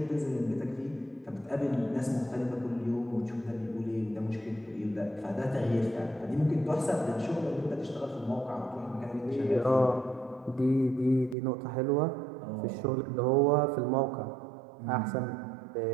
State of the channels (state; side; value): drops out; left; at 11.4 s